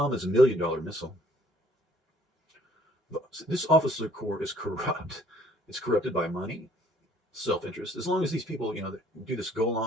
is $1 million missile. This officer corps is corrupt. It's corrupted by money, self-interest. As long as these people, do this go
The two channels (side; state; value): both; normal; correlation 0.60